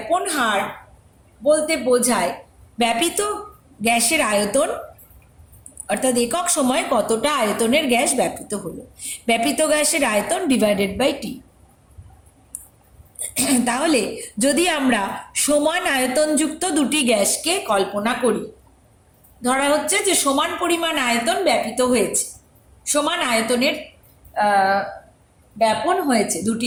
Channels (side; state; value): both; identical; correlation 1.00